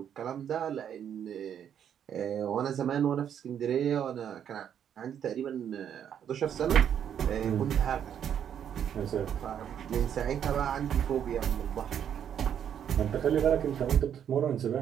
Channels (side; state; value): left; quieter; 9.0 dB